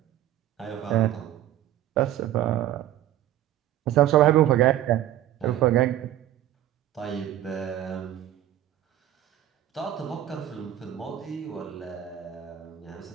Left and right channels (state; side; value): quieter; left; 12.6 dB